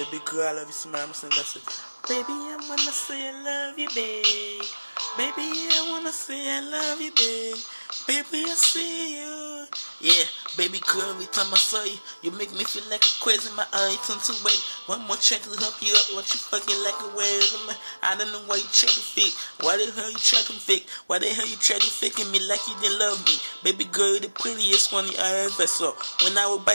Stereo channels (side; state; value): both; inverted; correlation -1.00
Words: girl, I love you so much. I'm saying that's it. Baby, I wanna say I love you, babe. Baby, I wanna say I love you, babe. Baby, I see you. Yeah, baby girl, every time I saw you, you make me feel like a crazy. My eye turn to wait. One more check to help you up. What you fucking like a way? I don't know why you try to fake. Why the hell you try to fake? Why the hell you try to faking me like you didn't love me? Baby girl, you're the prettiest one I ever saw. When I would